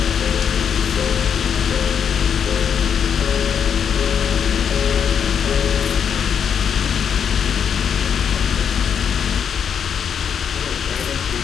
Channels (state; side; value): quieter; right; 7.7 dB